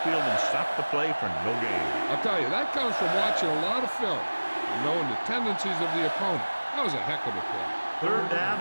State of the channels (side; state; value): both; inverted; correlation -1.00